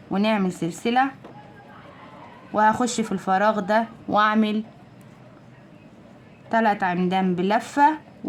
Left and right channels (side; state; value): both; identical; correlation 1.00